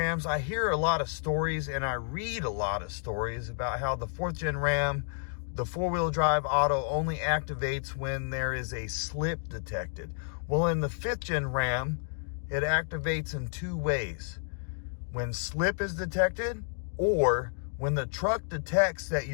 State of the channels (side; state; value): right; silent; digital silence